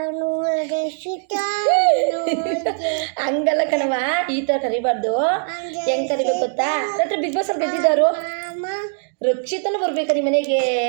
ಹಂಗಲ್ಲ ಕಣವ, ಈ ಥರ ಕರಿಬಾರ್ದು. ಹೆಂಗ್ ಕರಿಬೇಕು ಗೊತ್ತಾ? ರಾತ್ರಿ ಬಿಗ್ ಬಾಸ್ ಅಲ್ಲಿ ಗೆದ್ದಿದ್ದಾರು ರಕ್ಷಿತನು ಬರ್ಬೇಕಾ ನಿಮ್ಮ ಮನೆಗೆ?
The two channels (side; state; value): left; silent; digital silence